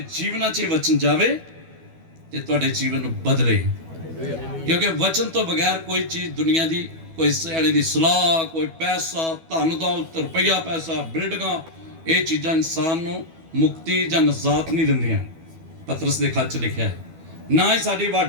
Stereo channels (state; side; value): late; left; 12 ms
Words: जीवन च वचन जावे ते तुहाडे जीवन नूं बदले। क्योंकि वचन तो बगैर कोई चीज़ दुनिया की, कोई सियाणे की सलाह, कोई पैसा, धन दौलत, रुपया पैसा, बिल्डिंगां, ये चीज़ां इंसान नूं मुक्ति जां नजात नहीं दिंदियां। पतरस दे खत च लिखिआ है ना ही साडी